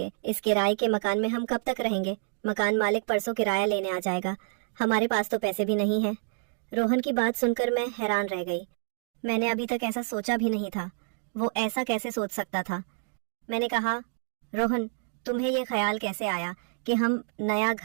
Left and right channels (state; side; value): silent; left; digital silence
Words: इस किराए के मकान में हम कब तक रहेंगे? मकान मालिक परसों किराया लेने आ जाएगा। हमारे पास तो पैसे भी नहीं है। रोहन की बात सुनकर मैं हैरान रह गई। मैंने अभी तक ऐसा सोचा भी नहीं था। वो ऐसा कैसे सोच सकता था? मैंने कहा, रोहन, तुम्हें ये ख्याल कैसे आया कि हम नया